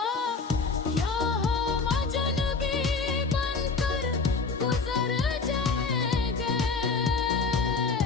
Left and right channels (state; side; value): quieter; right; 4.4 dB